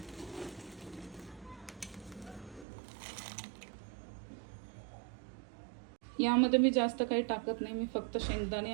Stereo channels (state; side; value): drops out; left; at 2.7 s